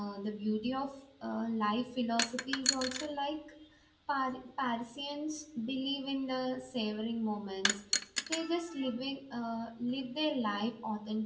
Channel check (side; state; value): both; identical; correlation 1.00